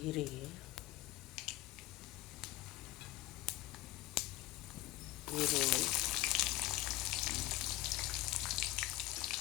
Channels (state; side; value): quieter; right; 16.6 dB